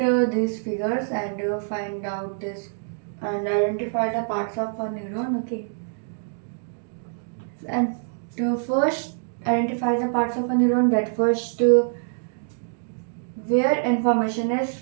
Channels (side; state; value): left; silent; digital silence